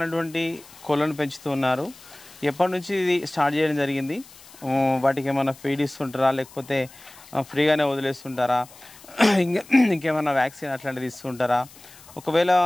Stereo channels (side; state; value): left; noise; hiss, 22 dB below the sound